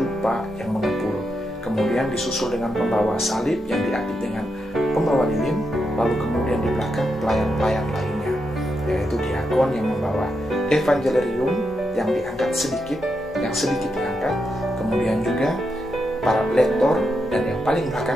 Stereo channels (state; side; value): normal; both; correlation 0.84